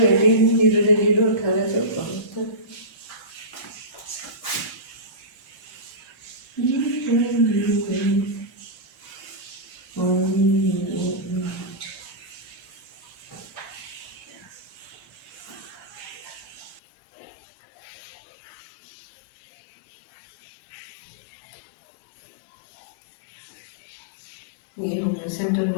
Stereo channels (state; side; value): drops out; right; at 16.8 s